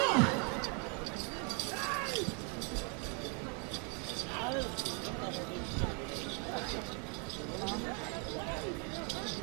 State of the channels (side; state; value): left; quieter; 36.6 dB